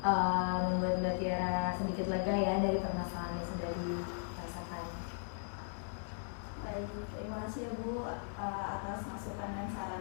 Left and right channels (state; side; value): silent; right; 53 dB below the other